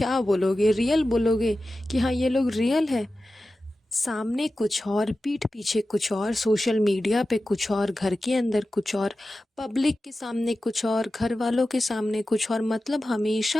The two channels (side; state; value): both; normal; correlation 0.94